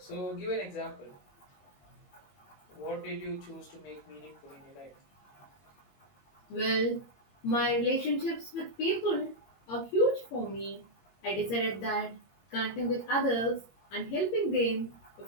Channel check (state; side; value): late; right; 21 ms